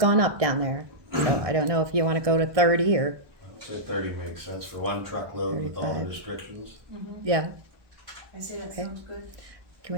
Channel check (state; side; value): late; left; 1.2 ms